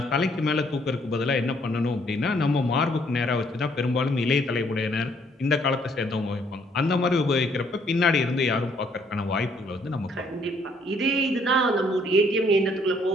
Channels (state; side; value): normal; both; correlation 0.66